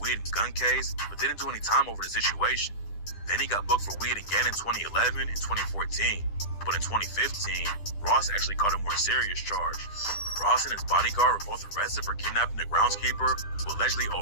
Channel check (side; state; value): right; late; 10 ms